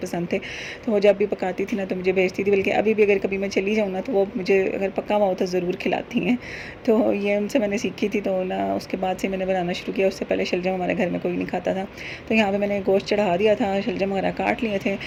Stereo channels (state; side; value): identical; both; correlation 1.00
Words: पसंद थे। तो वो जब भी पकाती थी ना तो मुझे भेजती थी, बल्कि अभी भी अगर कभी मैं चली जाऊँ ना तो वो मुझे अगर पका हुआ हो तो ज़रूर खिलाती हैं। तो ये उनसे मैंने सीखी थी। तो ना उसके बाद से मैंने बनाना शुरू किया। उससे पहले शलजम हमारे घर में कोई नहीं खाता था। तो यहाँ पर मैंने गोश्त चढ़ा दिया था, शलजम वगैरह काट लिए थे